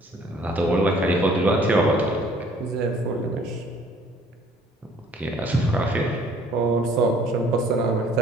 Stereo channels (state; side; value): normal; both; correlation 0.57